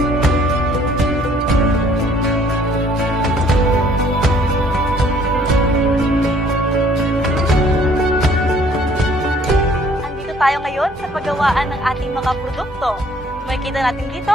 Tayo ngayon sa paggawaan ng ating mga produkto. Makikita natin dito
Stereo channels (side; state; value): both; normal; correlation 0.59